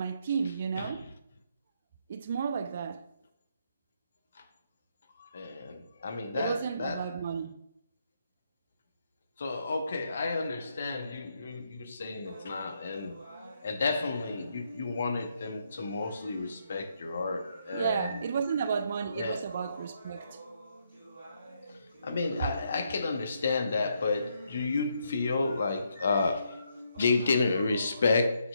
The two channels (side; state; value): both; inverted; correlation -0.77